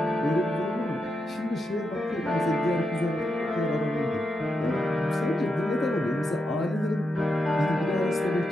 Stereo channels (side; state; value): both; normal; correlation 0.85